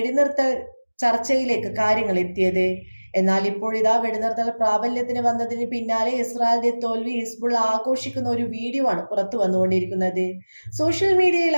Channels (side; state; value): both; inverted; correlation -1.00